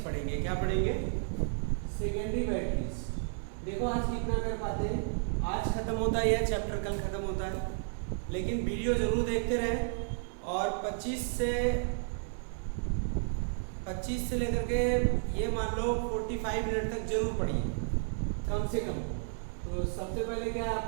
पढ़ेंगे। क्या पढ़ेंगे? Secondary batteries. देखो आज कितना कर पाते हैं। आज खत्म होता है यह चैप्टर, कल खत्म होता है, लेकिन वीडियो जरूर देखते रहें और 25 से लेकर के ये मान लो 45 मिनट तक जरूर पढ़िए कम से कम। तो सबसे पहले क्या है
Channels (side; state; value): left; silent; 56 dB below the other